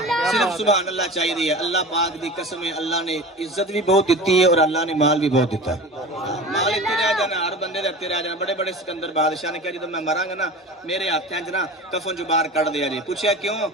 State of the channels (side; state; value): both; normal; correlation 0.34